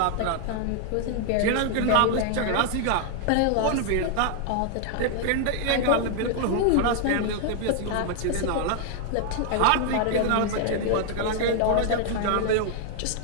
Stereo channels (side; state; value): both; different; correlation 0.00